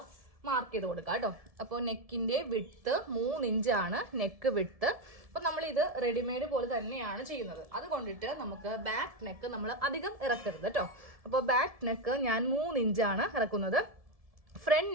മാർക്ക് ചെയ്ത് കൊടുക്കാം കേട്ടോ. അപ്പോൾ നെക്കിന്റെ വിഡ്ത്ത് 3 ഇഞ്ചാണ് നെക്ക് വിഡ്ത്ത്. അപ്പോൾ നമ്മൾ ഇത് റെഡിമെയ്ഡ് പോലെ തന്നെയാണ് ചെയ്യുന്നത്. അതുകൊണ്ടിട്ട് നമുക്ക് ബാക്ക് നെക്ക് നമ്മൾ അധികം ഇറക്കരുത് കേട്ടോ. അപ്പോൾ ബാക്ക് നെക്ക് ഞാൻ 3 ഇഞ്ചാണ് ഇറക്കുന്നത്. ഫ്രണ്ട്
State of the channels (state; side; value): late; left; 1.7 ms